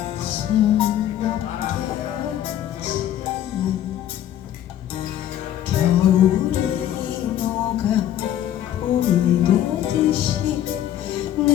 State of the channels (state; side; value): quieter; right; 11.5 dB